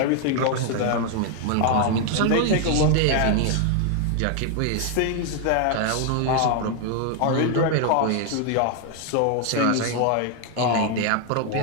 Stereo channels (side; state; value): both; different; correlation 0.00